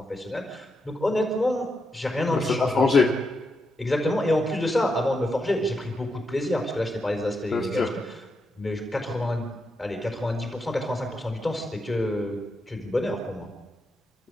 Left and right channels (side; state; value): both; normal; correlation 0.84